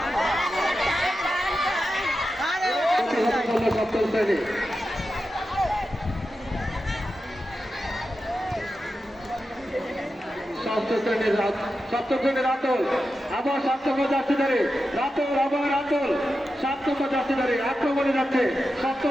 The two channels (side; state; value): both; normal; correlation 0.90